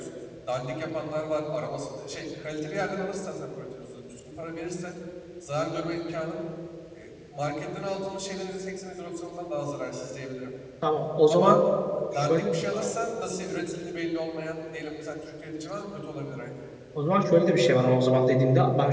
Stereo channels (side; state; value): both; identical; correlation 1.00